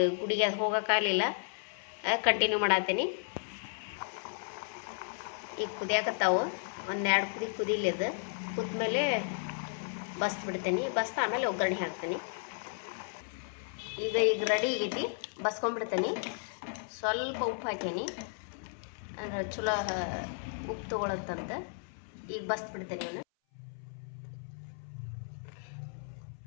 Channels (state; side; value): silent; right; 55 dB below the other